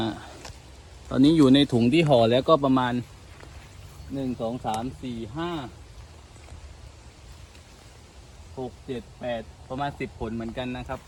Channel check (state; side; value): identical; both; correlation 1.00